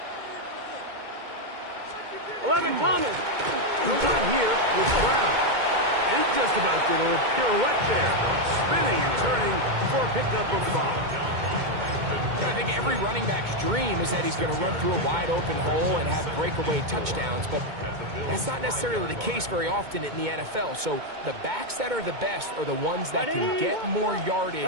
11, Thomas. The run here with Brown. He just about did a little pirouette there, spinning and turning for a pickup of 5. I think every running back's dream is that he's going to run through a wide open hole and have breakaway touchdowns, but that's not necessarily the case very often in the NFL. So the backs that are the best are the ones that can get more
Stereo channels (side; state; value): left; late; 2.2 ms